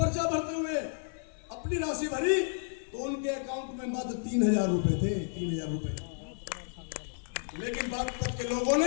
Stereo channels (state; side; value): silent; right; 57 dB below the other